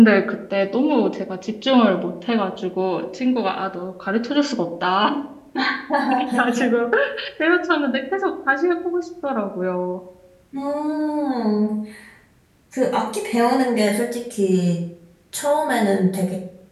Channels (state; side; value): identical; both; correlation 1.00